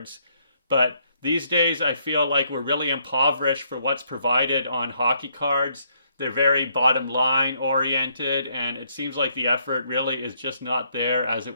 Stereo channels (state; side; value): inverted; both; correlation -0.71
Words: but these days, I feel like we're really impoverished for what's provided on hockey cards. They're very bottom line oriented, and it seems like the effort really is just not there as it